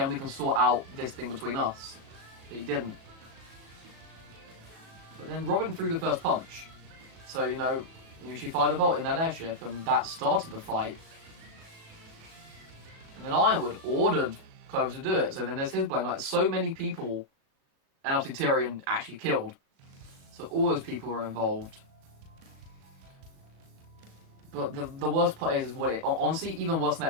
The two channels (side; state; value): left; late; 37 ms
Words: we can sort out this thing between us. But he didn't. But then Robin threw the first punch. So, she fired a bolt in that airship and that started the fight. And then Ironwood ordered Clover to do it, so then there's his blame. Like, so many people, and obviously Tyrion actually killed. So all those people were involved. But the worst part is what honestly, even worse than